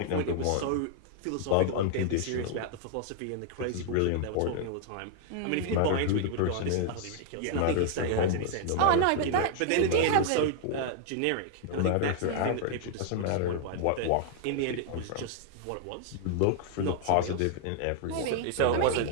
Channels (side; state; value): both; different; correlation 0.00